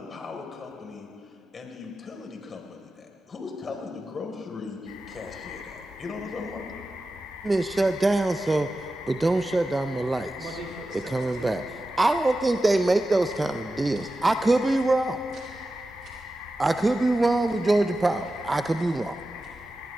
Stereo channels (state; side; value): normal; both; correlation 0.92